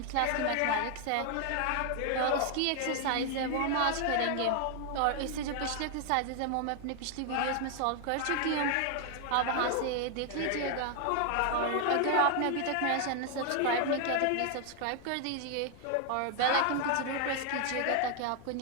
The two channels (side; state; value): both; different; correlation 0.00